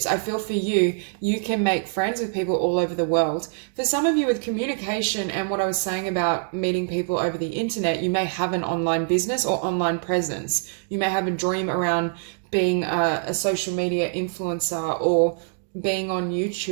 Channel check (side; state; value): left; silent; 62 dB below the other